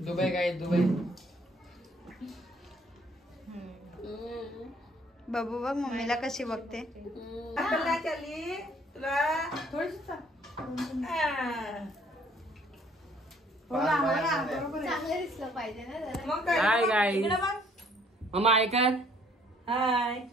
काय दुबई। बाबू बघ मम्मीला कशी बघते। चली तुला थोडीशी चांगलं दिसलं पाहिजे ना जरा। मग काय? हाय गाईज, इकडे बघ। मम्मा ऐका। हाय,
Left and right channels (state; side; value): normal; both; correlation 0.61